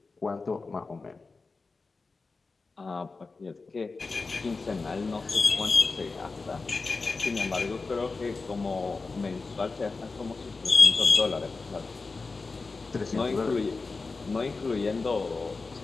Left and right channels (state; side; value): quieter; right; 4.0 dB